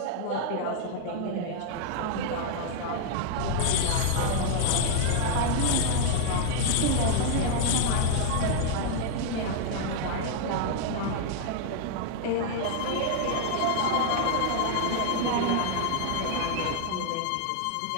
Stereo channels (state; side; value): different; both; correlation 0.00